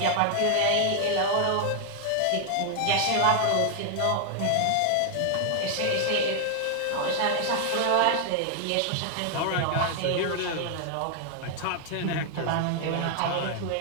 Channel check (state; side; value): different; both; correlation 0.00